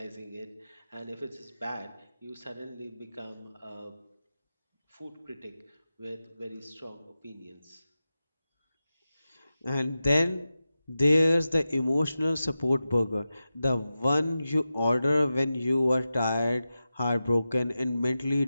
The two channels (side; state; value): both; inverted; correlation -0.93